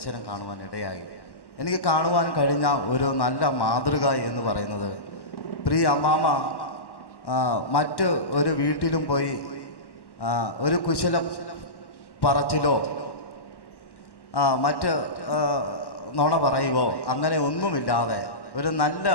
കാണുവാൻ ഇടയായി. എനിക്ക് കാണുവാൻ കഴിഞ്ഞ ഒരു നല്ല മാതൃക എന്ന് പറയുന്നത്, പ്രിയ അമ്മാമ മറ്റ് ഒരു വീട്ടിലും പോയി ഒരു കുശല പറച്ചിലോ മറ്റ് നുണ പറയുവോ അങ്ങനെ ഒന്നുമില്ലാതെ ഒരു നല്ല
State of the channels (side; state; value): right; late; 1.1 ms